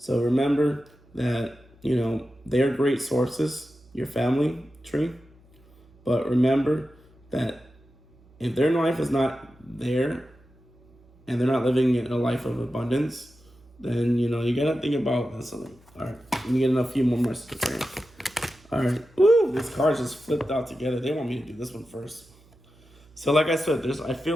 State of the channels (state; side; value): noise; right; hum, 28 dB below the sound